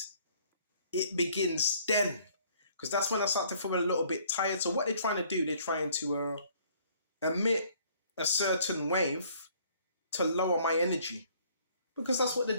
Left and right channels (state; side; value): inverted; both; correlation -0.60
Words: it begins then. Because that's when I start to feel a little bit tired. So what they're trying to do, they're trying to emit a certain wave to lower my energy. Because that's what the